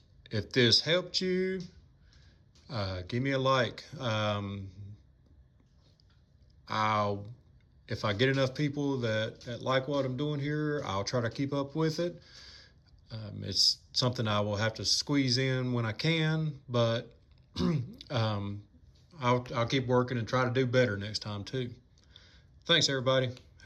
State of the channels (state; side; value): identical; both; correlation 1.00